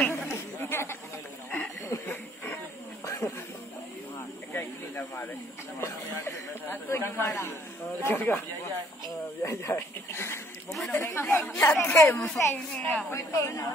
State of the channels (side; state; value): both; normal; correlation 0.62